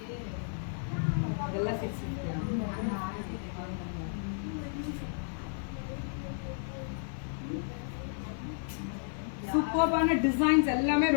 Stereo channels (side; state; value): right; silent; 56 dB below the other